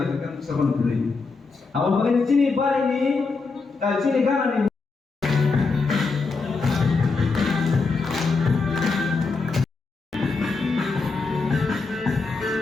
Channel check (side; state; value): right; quieter; 4.2 dB